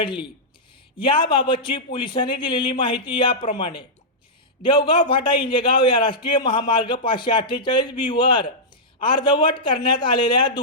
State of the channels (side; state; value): both; normal; correlation -0.11